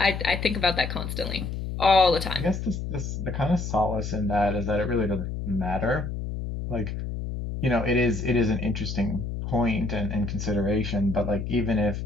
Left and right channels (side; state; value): left; noise; hum, 5 dB below the sound